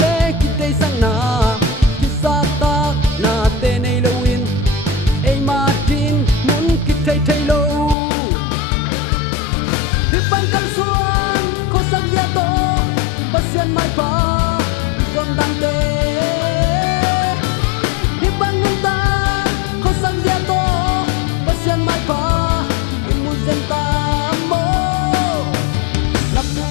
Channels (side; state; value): right; drops out; at 8.0 s